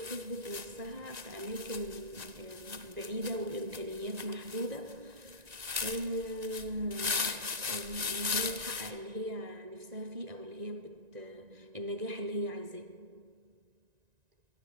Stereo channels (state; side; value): late; left; 1.9 ms